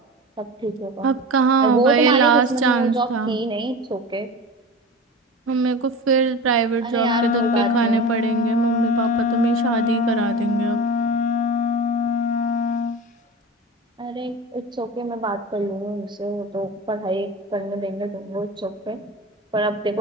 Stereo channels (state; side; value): normal; both; correlation 0.30